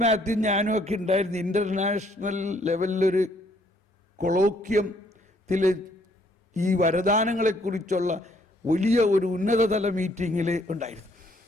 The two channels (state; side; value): normal; both; correlation 0.66